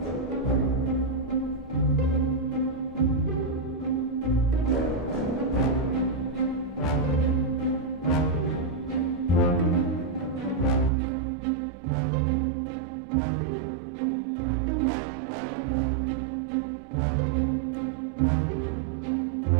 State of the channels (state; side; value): drops out; left; at 10.9 s